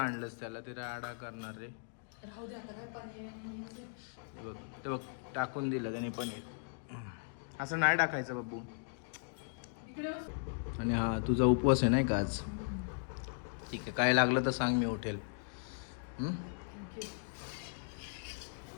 त्याला, ते राडा करणार रे. ते बघ टाकून दिलं त्याने पनीर. असं नाही टाकायचं बाबू. आणि हा तुझा उपवास आहे नाही का आज? ठीक आहे, काय लागलं तर सांग, मी उठेल.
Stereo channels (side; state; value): right; silent; digital silence